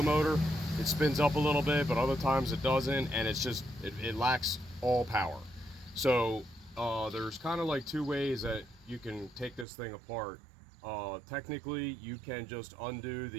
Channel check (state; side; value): drops out; left; at 9.7 s